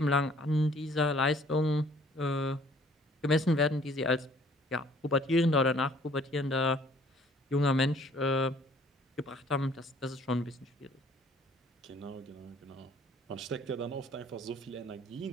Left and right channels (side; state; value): both; normal; correlation 0.57